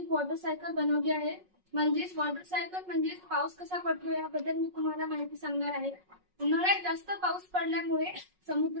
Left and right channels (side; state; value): left; late; 5.4 ms